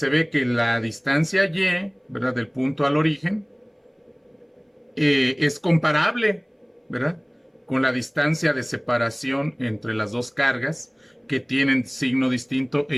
ve que la distancia Y, ¿verdad? Del punto al origen, es comparable, ¿verdad? Con la distancia de separación entre las dos cargas que tienen signo distinto e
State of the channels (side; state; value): both; identical; correlation 1.00